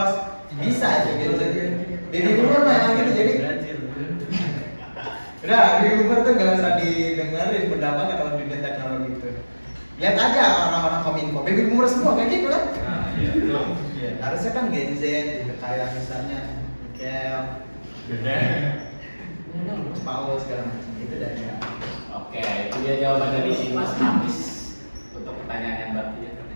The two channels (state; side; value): inverted; both; correlation -1.00